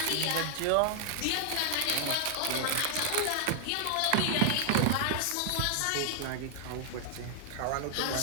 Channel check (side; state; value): both; different; correlation 0.00